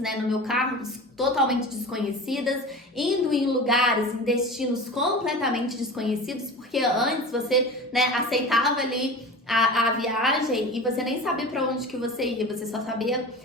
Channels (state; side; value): normal; both; correlation 0.33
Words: no meu carro, totalmente desconhecidas, indo em lugares, em destinos completamente desconhecidos, porque antes você, né, aceitava ali a viagem e você nem sabia para onde que você ia, você só sabia